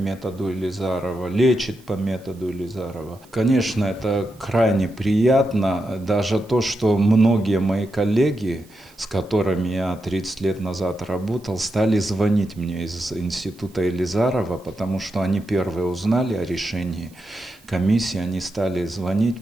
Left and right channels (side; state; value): right; noise; hiss, 28 dB below the sound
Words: Елизарова, лечит по методу Елизарова. Конечно, это крайне приятно, даже то, что многие мои коллеги, с которыми я 30 лет назад работал, стали звонить мне из института Елизарова, потому что они первые узнали о решении комиссии, они стали